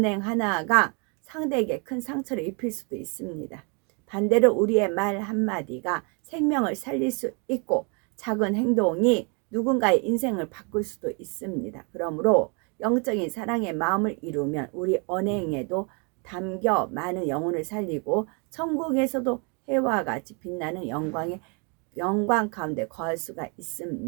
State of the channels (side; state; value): left; quieter; 34.7 dB